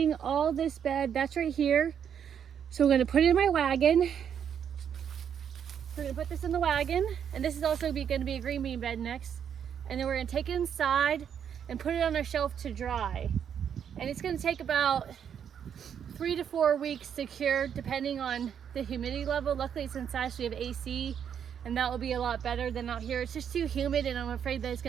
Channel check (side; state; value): left; quieter; 8.3 dB